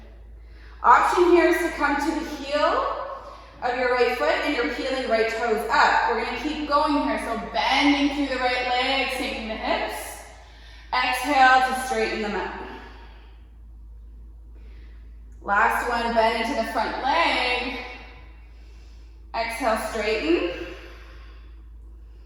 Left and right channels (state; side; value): identical; both; correlation 1.00